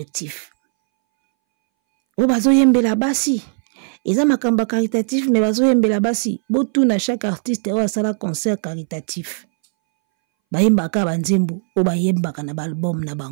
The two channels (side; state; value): left; silent; 64 dB below the other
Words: O bazo yembela basi. Eza makamba caritatif mais bazo yembela basi. Botu na chaque artiste o asala concert caritatif. Bayembaka banzembo o bayembaka na album na